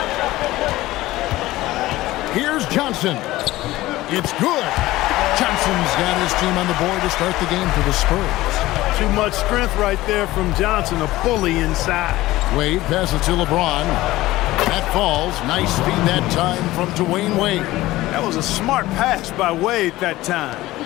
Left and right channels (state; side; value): quieter; right; 17.3 dB